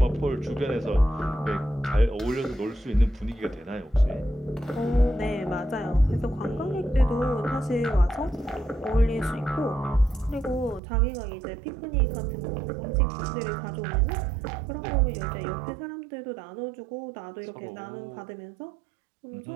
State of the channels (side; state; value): left; drops out; at 10.8 s